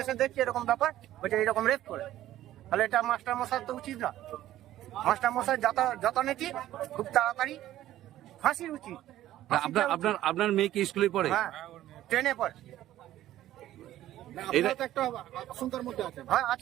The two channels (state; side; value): quieter; left; 13.7 dB